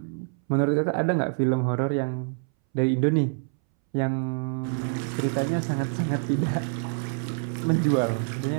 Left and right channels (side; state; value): left; silent; 61 dB below the other